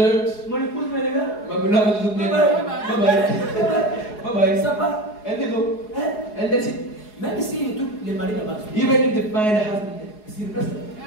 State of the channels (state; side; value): late; right; 4.8 ms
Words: mon épouse me regarde. my beloved is looking at me. Bye bye. Bye bye. Ça va? And they go. Hein? And that's it. Même si tous les maris là-bas, Even if they find a husband sur place,